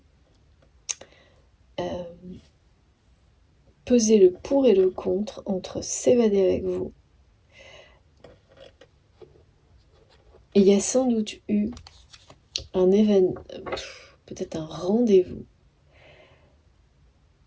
pesé le pour et le contre entre s'évader avec vous. Et il y a sans doute eu un événement, peut-être un rendez-vous,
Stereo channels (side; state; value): both; identical; correlation 1.00